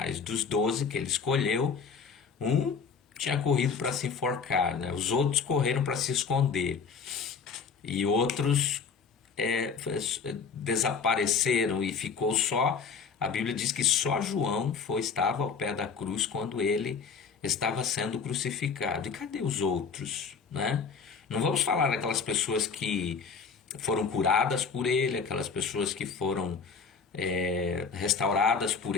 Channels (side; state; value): right; quieter; 5.6 dB